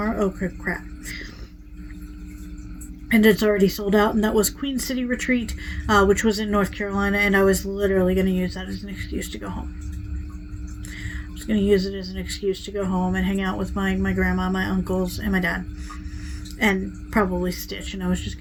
Oh, crap. And it's already sold out, and that was Queen City Retreat, which was in North Carolina, and I was literally going to use that as an excuse to go home. I was going to use it as an excuse to go home and hang out with my grandma, my uncles, and my dad. And probably stitch, and I was just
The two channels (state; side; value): identical; both; correlation 1.00